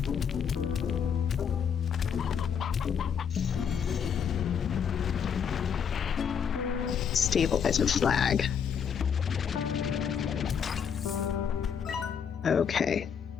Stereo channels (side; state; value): right; quieter; 7.3 dB